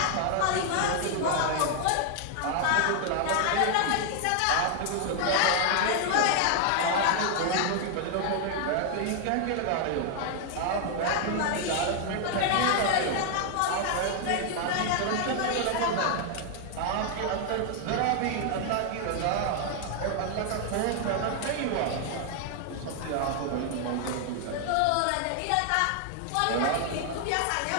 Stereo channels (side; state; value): both; different; correlation 0.00